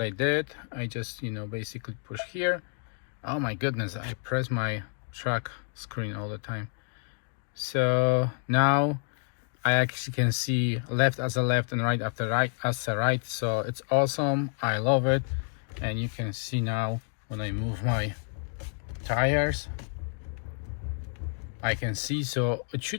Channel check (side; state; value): right; silent; 58 dB below the other